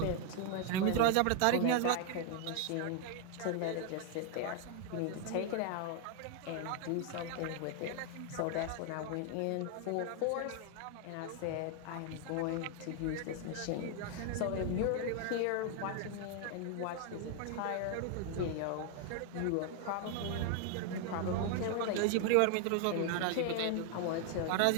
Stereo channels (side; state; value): both; different; correlation 0.00